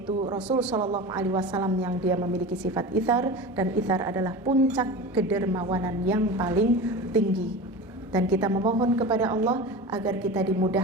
Rasul Shallallahu Alaihi Wasallam yang dia memiliki sifat ithar, dan ithar adalah puncak kedermawanan yang paling tinggi. Dan kita memohon kepada Allah agar kita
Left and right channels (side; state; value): both; normal; correlation 0.30